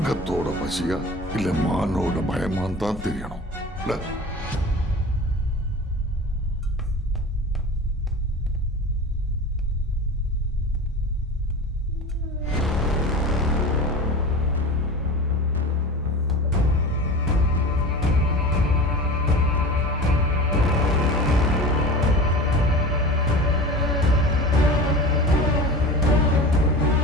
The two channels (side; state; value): both; normal; correlation 0.34